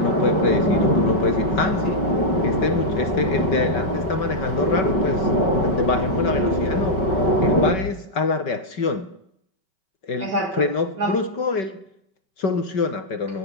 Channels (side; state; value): right; late; 5.3 ms